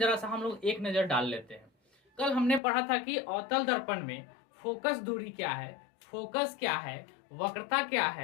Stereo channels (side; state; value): right; drops out; at 2.6 s